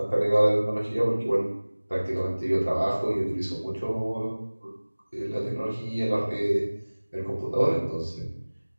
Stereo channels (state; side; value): inverted; both; correlation -1.00